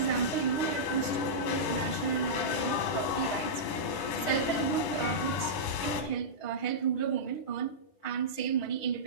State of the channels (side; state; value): right; late; 10 ms